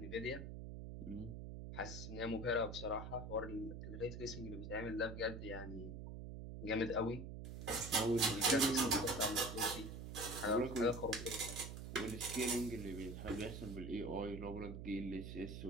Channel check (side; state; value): right; noise; hum, 8 dB below the sound